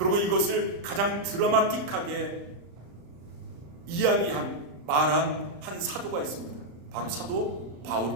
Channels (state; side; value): late; left; 35 ms